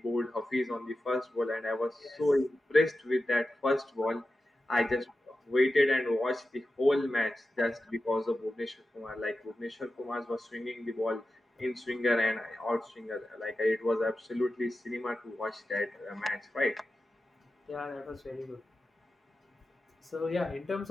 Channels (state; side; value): normal; both; correlation 0.92